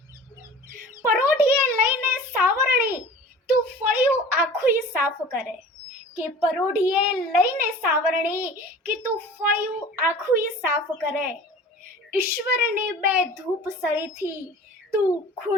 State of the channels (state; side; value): normal; both; correlation 0.41